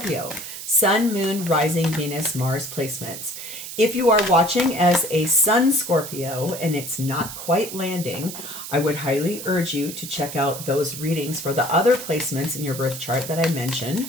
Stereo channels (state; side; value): noise; right; hiss, 10 dB below the sound